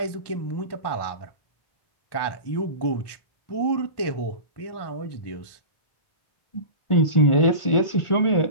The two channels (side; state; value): right; late; 1.1 ms